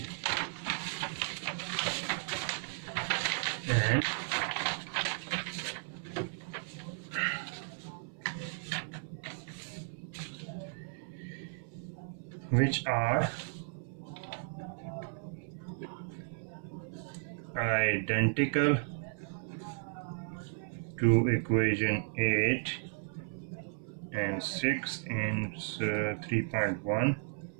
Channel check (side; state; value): left; silent; 55 dB below the other